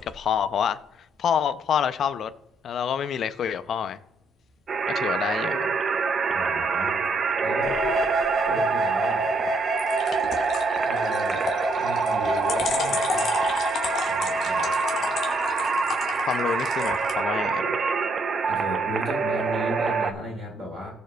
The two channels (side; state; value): both; normal; correlation 0.71